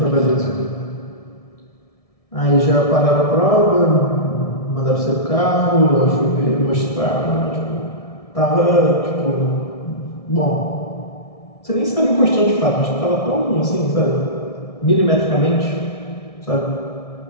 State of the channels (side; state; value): right; late; 1.6 ms